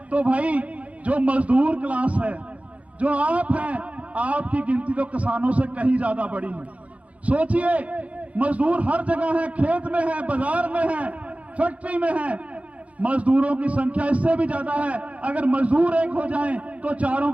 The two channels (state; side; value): late; left; 0.066 ms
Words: तो भाई जो मजदूर क्लास है, जो आप हैं, आपकी गिनती तो किसानों से कहीं ज्यादा बड़ी है। सोचिए, मजदूर हर जगह है, खेत में है, बाजार में है, फैक्ट्री में है। मजदूरों की संख्या इससे भी ज्यादा है। अगर मजदूर एक हो जाएं तो चारों